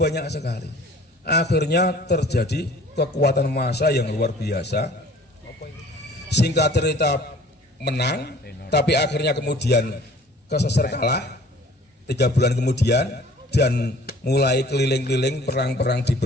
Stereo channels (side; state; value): both; normal; correlation 0.51